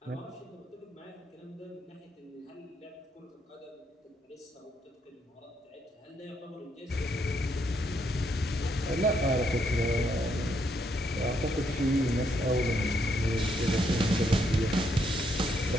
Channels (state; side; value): normal; both; correlation 0.75